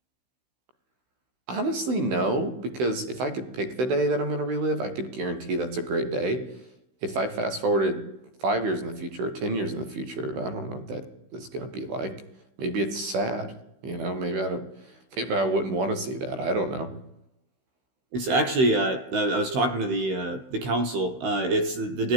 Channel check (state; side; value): late; left; 16 ms